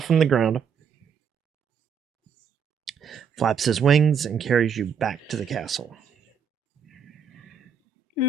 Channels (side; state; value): left; quieter; 6.2 dB